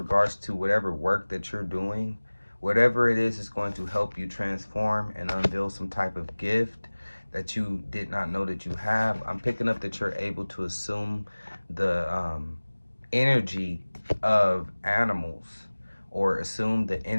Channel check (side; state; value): both; inverted; correlation -1.00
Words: to whatever work that you're doing. Whatever it is going to help you transform and unveil some type of gift that you did not know that you have. I'm picking up that you're able to assume the energy of animals, or assume the